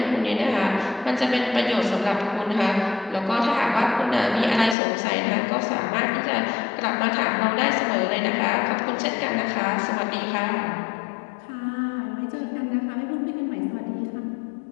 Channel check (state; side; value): drops out; right; at 4.8 s